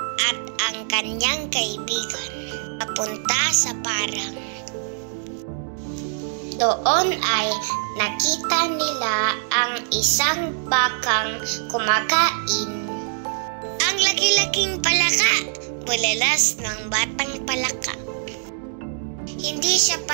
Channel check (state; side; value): silent; left; digital silence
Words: at ang kanyang kaibigan papunta sa parang. Doon ay nakita nila ang isang bakang kumakain. Ang laki-laking palaka, bulalas ng batang palaka. Hindi siya